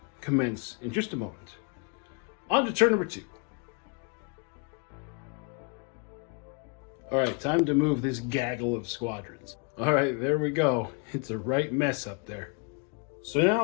commence in just a moment. On to turn number 2. All right, time to move this gaggle of squadrons. All right, there we go. It's a right mess up there. So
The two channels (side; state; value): right; quieter; 34.8 dB